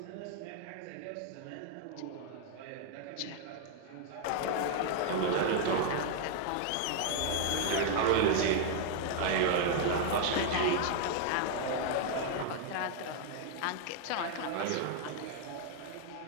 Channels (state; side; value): different; both; correlation 0.00